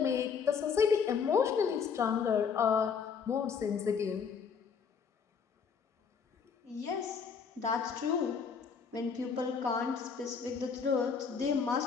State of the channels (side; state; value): right; quieter; 6.2 dB